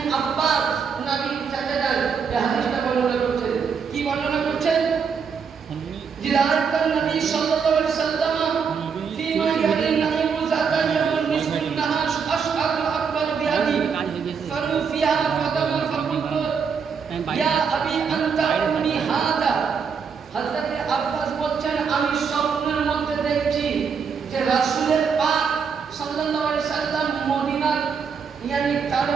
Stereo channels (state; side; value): quieter; left; 6.2 dB